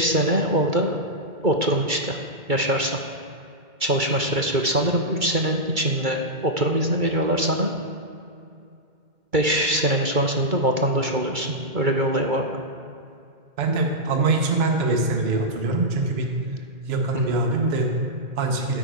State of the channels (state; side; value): late; left; 2.3 ms